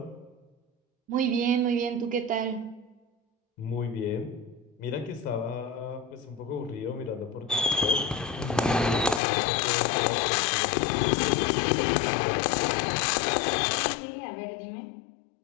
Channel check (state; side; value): drops out; right; at 9.2 s